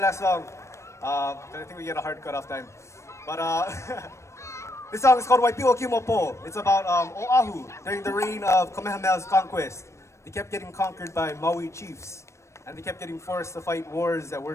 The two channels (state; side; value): late; right; 0.14 ms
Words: song. I think we get a hard cut-off time. But this song is called Waipiwa Kimopo. It's about Oahu during the reign of Kamehameha's conquest. They kept getting conquered by Maui chiefs, and they kept getting forced to fight wars that